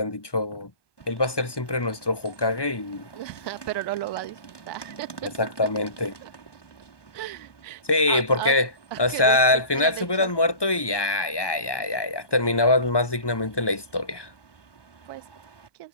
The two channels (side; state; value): right; late; 1.2 ms